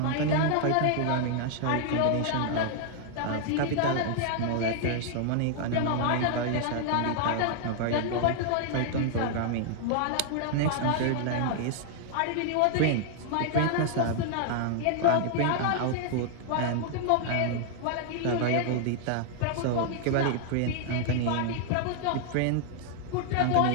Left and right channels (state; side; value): different; both; correlation 0.00